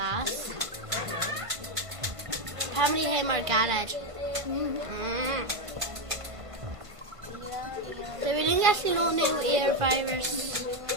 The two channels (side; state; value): left; late; 1.5 ms